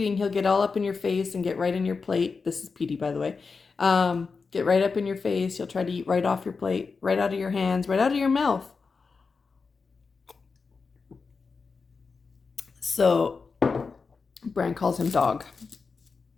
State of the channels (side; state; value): right; quieter; 4.8 dB